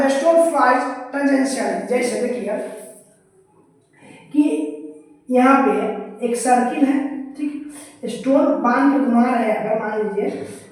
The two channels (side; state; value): both; identical; correlation 1.00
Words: stone flies tangentially। जैसे देखिए कि यहाँ पे एक सर्किल है, ठीक, स्टोन बांध के घुमा रहे हैं, अगर मान लीजिए